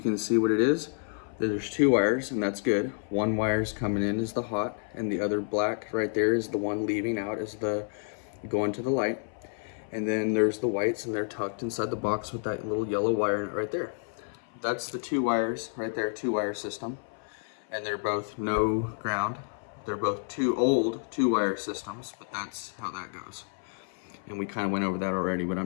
see what it is. There's two wires, and that's good. One wire's coming in is the hot, and the other black right there is the one leaving out is the going to the light. And then there's the whites, and they're tucked inside the box with that little yellow wire in it right there. That's the two wires right there, two-wire system. And they're both no ground. They're both two old two-wire systems, but that's how that goes. And we kind of went over that already, but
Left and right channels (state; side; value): silent; right; 57 dB below the other